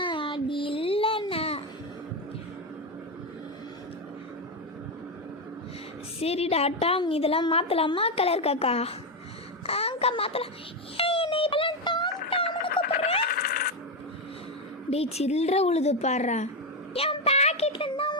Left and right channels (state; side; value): normal; both; correlation 0.08